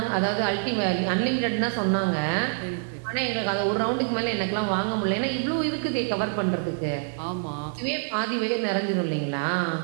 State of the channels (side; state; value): left; silent; digital silence